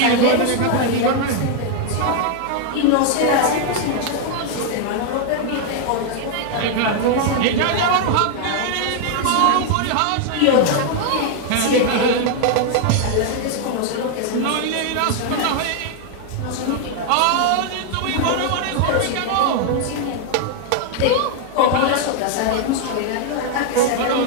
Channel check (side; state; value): both; different; correlation 0.00